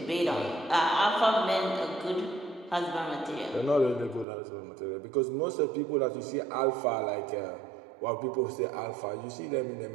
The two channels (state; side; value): drops out; left; at 4.2 s